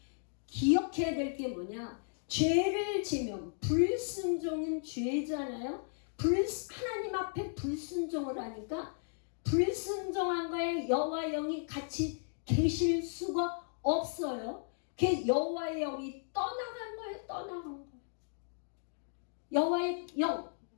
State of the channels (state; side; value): silent; right; digital silence